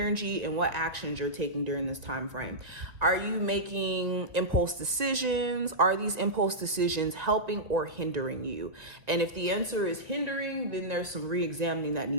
and what actions you're taking during this time frame. Are you making impulse decisions? Are these impulse decisions helping or hindering you? And if the answer is hindering, then there's some re-examining that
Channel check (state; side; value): late; left; 1.9 ms